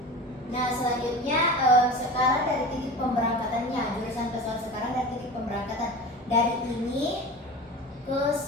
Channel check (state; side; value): normal; both; correlation 0.33